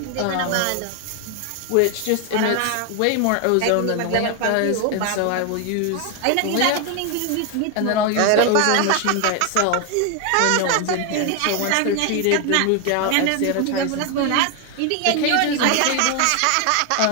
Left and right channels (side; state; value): both; different; correlation 0.01